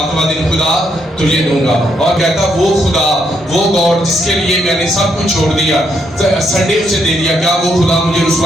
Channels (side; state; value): both; normal; correlation 0.76